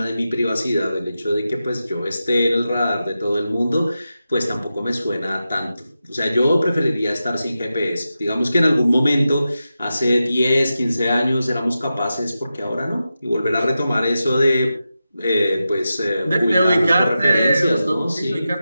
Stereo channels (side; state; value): both; inverted; correlation -0.91